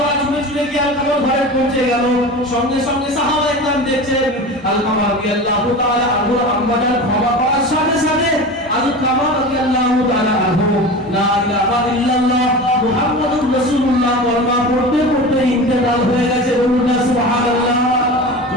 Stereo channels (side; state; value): both; normal; correlation 0.31